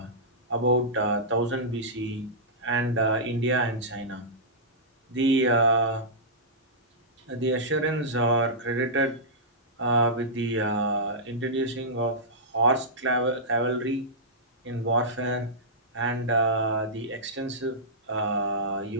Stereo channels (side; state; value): both; normal; correlation -0.14